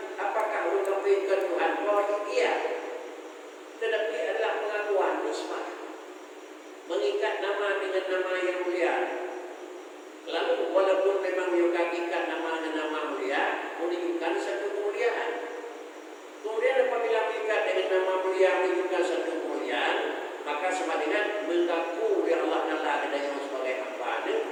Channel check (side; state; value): both; identical; correlation 1.00